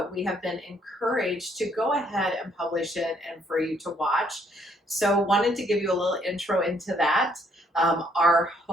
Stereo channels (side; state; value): both; normal; correlation 0.68